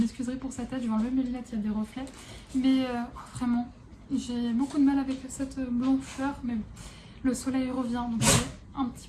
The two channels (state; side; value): identical; both; correlation 1.00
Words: pour cette tête, je vais enlever mes lunettes, il y a des reflets. Mais vraiment, j'ai beaucoup de mal avec cette blancheur, mais bon, le soleil revient, donc je vais un